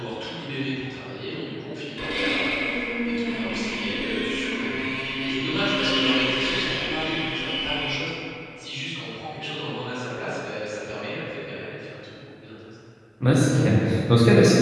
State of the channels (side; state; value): both; identical; correlation 1.00